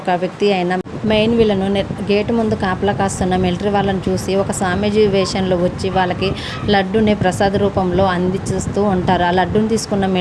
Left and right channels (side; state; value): both; identical; correlation 1.00